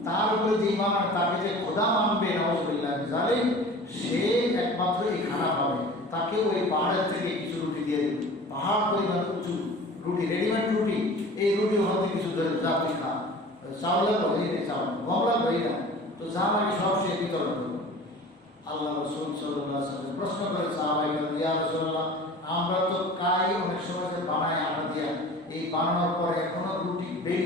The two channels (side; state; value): both; normal; correlation 0.41